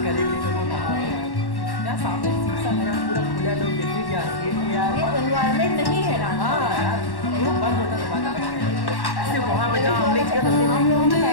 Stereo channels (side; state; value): right; late; 1.1 ms